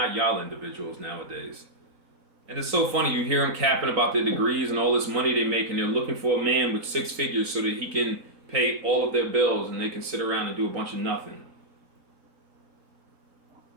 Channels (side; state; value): left; late; 3.9 ms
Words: y'all individuals nowadays. And it's so funny, you hear them capping about their degrees and all this money they make, and they're looking for a man with 6 figures so that he can pay all of their bills and they can sit around and do a bunch of nothing.